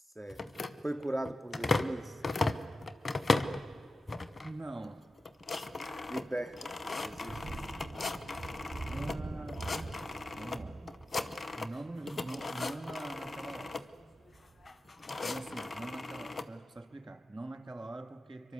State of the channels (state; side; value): normal; both; correlation 0.93